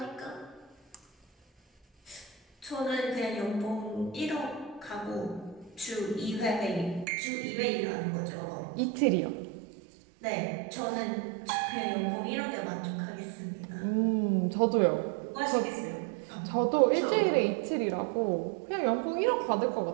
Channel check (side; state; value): left; drops out; at 7.1 s